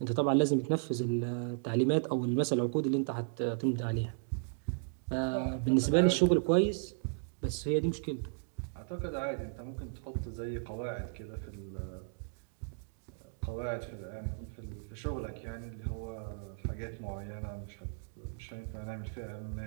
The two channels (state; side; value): silent; left; digital silence